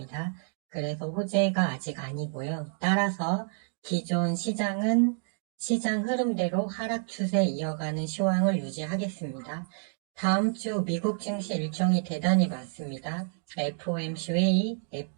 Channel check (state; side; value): silent; left; 58 dB below the other